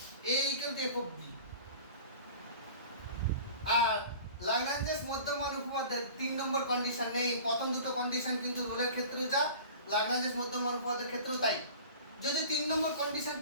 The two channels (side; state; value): both; inverted; correlation -0.41